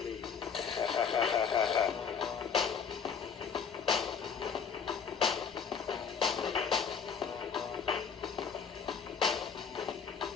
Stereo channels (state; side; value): quieter; right; 6.5 dB